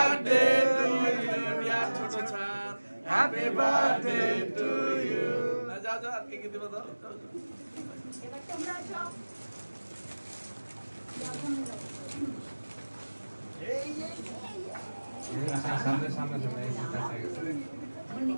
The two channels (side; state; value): both; inverted; correlation -1.00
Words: to you dear ছোট ছাদ, হ্যাপি বার্থডে টু ইউ। যাও যাও আর কে দিবা দাও। এবার তোমরা যাও। সামনে সামনে সামনে